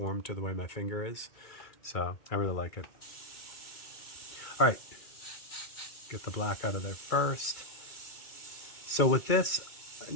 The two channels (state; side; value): late; right; 2.3 ms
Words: to the way my finger is. So I really like it. All right, get the black out of there first. So with this,